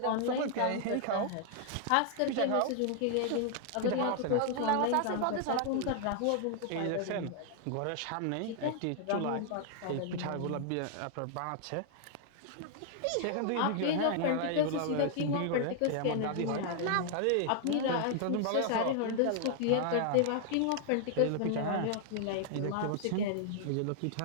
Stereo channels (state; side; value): different; both; correlation 0.00